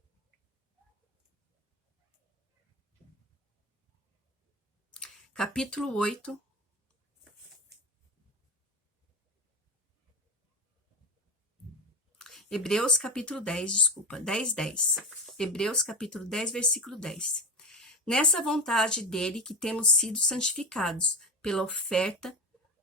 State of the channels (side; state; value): both; normal; correlation 0.22